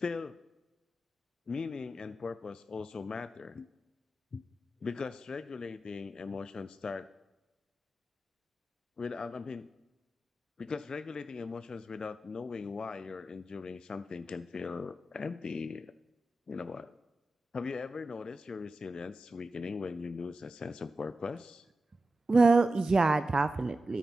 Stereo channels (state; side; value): normal; both; correlation 0.92